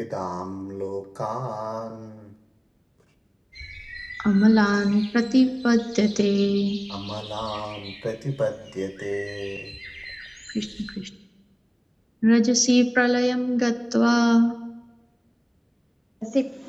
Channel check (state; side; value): identical; both; correlation 1.00